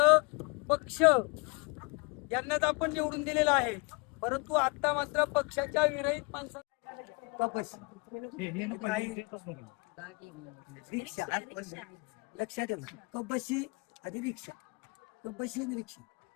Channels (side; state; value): right; quieter; 30.9 dB